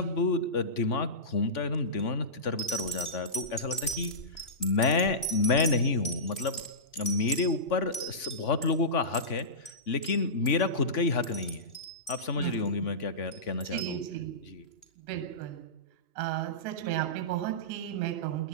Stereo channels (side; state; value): right; late; 3.1 ms